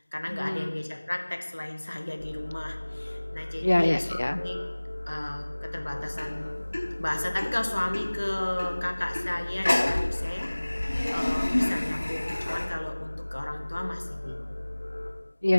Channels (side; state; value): both; inverted; correlation -1.00